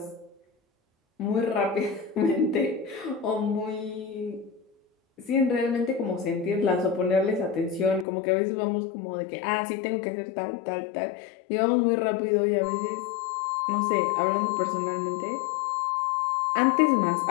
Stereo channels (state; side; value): drops out; right; at 8.1 s